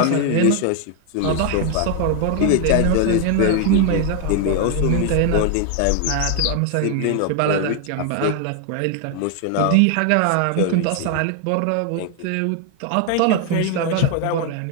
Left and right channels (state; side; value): different; both; correlation 0.00